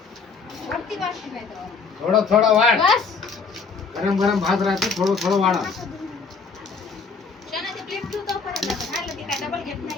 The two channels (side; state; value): right; quieter; 4.9 dB